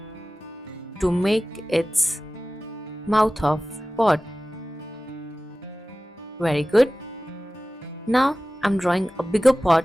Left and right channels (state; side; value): normal; both; correlation 0.96